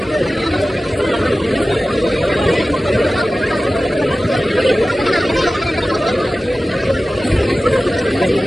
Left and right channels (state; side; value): normal; both; correlation 0.95